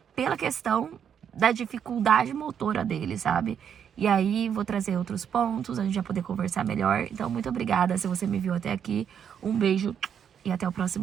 pela questão da dificuldade motora dele, sabe? E aí, vou trazer outros pontos, a gente vai poder conversar melhor. Então, muito obrigada se você me viu até aqui. Um beijo e até o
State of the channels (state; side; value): quieter; left; 8.2 dB